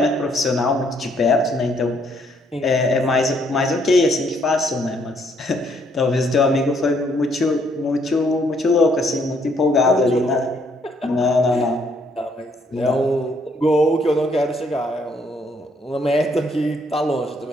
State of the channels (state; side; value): normal; both; correlation 0.68